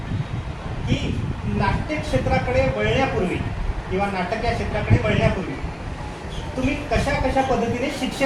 की नाट्य क्षेत्राकडे वळण्यापूर्वी किंवा नाटक या क्षेत्राकडे वळण्यापूर्वी तुम्ही कशा कशा पद्धतीने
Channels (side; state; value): both; identical; correlation 1.00